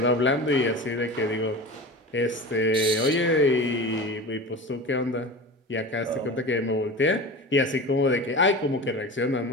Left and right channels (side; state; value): both; normal; correlation 0.31